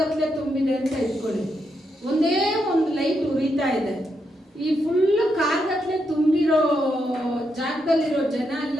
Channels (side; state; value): both; normal; correlation 0.81